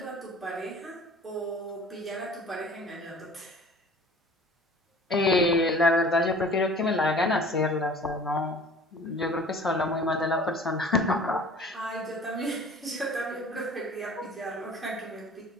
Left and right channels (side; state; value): both; normal; correlation 0.46